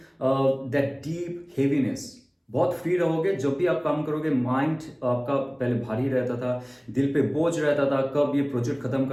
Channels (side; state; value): both; identical; correlation 1.00